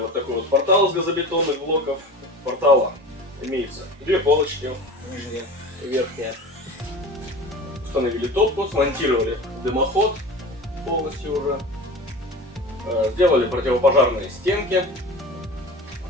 такой вот портал из газобетонных блоков. У портала имеется две полочки, нижняя и верхняя. Установили топку, смонтировали дымоход полностью уже. Сделали противопожарные стенки.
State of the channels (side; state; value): both; normal; correlation 0.34